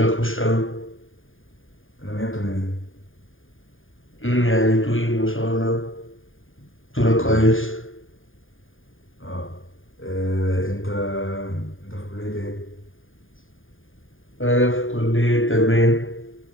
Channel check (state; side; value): late; right; 0.59 ms